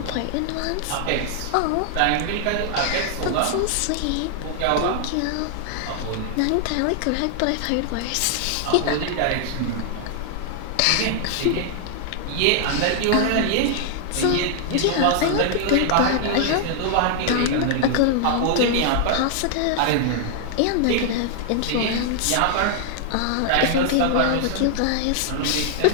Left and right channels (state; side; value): different; both; correlation 0.00